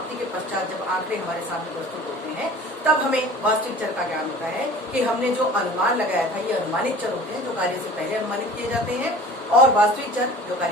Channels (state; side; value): normal; both; correlation 0.43